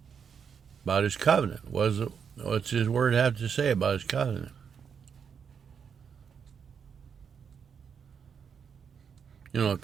About his covenant. What's his word have to say about his covenant? You know, a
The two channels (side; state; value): left; quieter; 6.9 dB